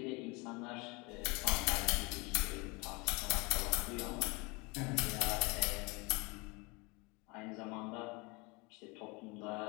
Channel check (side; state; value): right; quieter; 27.4 dB